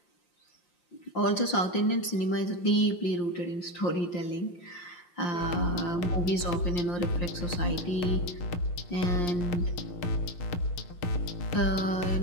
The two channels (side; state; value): right; late; 5.7 ms